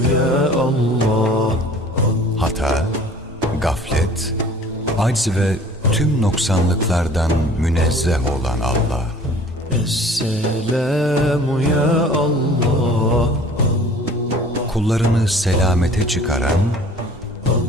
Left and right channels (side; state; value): both; normal; correlation 0.49